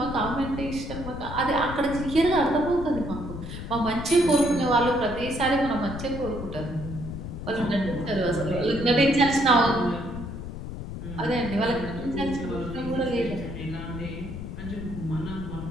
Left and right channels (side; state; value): left; noise; rumble, 8 dB below the sound